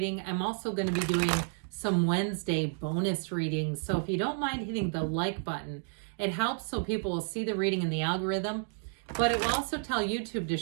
I'm also going to be doing some Wednesday bonus readings. So if you don't mind hitting the like button, it helps so people will see the reading in the algorithm. But it will also tell YouTube to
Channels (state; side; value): silent; left; 57 dB below the other